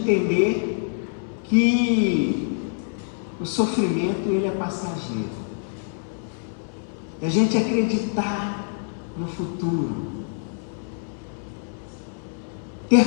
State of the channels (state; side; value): silent; right; 62 dB below the other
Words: que o sofrimento ele é passageiro, da gente acreditar no futuro, ter